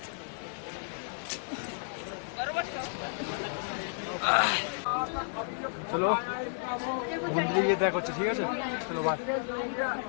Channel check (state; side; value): silent; right; digital silence